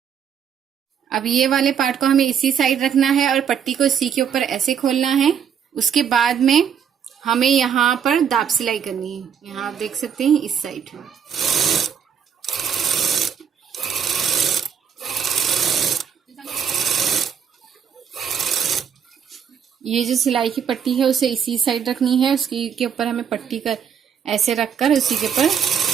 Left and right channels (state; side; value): quieter; left; 7.8 dB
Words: अब ये वाले पार्ट को हमें इसी साइड रखना है और पट्टी को इसी के ऊपर ऐसे खोलना है। उसके बाद में हमें यहाँ पर दाब सिलाई करनी है। यहाँ आप देख सकते हैं इस साइड। ये जो सिलाई की पट्टी है उसे इसी साइड रखनी है। उसके ऊपर हमें पट्टी कर ऐसे रखकर उसी के ऊपर